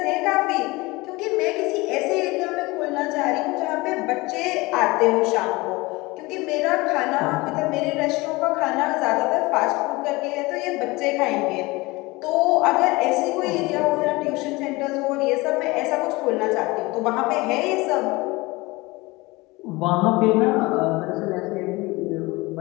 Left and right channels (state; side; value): quieter; right; 22.6 dB